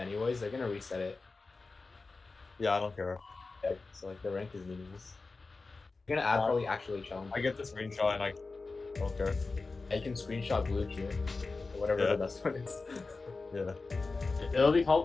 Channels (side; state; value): right; quieter; 3.8 dB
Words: They're gonna reset it. Yeah, I don't care. Yeah, so like the rank is meaningless. You're gonna add probably actually challenge. I get the screenshot and I don't care. I can screenshot blue here, or whatever Yeah. the best one is. Yeah. It'll be